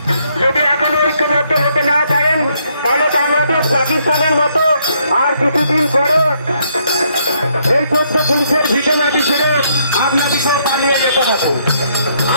यदि एखनो ऐक्यबद्ध होते ना पारेन ताहले बांग्लादेश पाकिस्तानेर मतो आर কিছুদিন পরে এই ছোট্ট পুলিশের ভিটে মাটি ছেড়ে আপনাদেরকে পালিয়ে যেতে হবে।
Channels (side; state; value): both; inverted; correlation -0.71